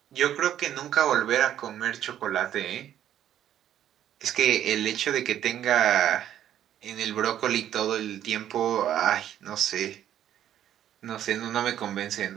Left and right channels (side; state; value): left; quieter; 11.0 dB